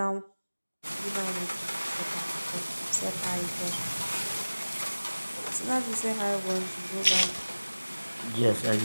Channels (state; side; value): inverted; both; correlation -1.00